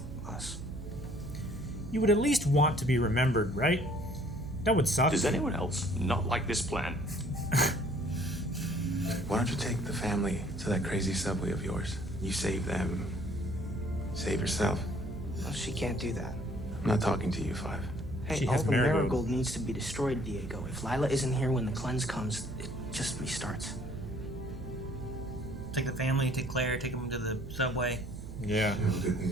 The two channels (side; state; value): right; noise; hum, 12 dB below the sound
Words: us. You would at least want to be remembered, right? That would suck. Does anyone else not like this plan? Why don't you take the family to that crazy subway of yours? You save them. Save yourself. Well, she can't do that. I'm not talking to you, Five. Hey, all the marigold needs to be destroyed, Diego. If Lila isn't here when the cleanse comes, it just restarts. Take the family, take Claire, take them to the subway. Yeah.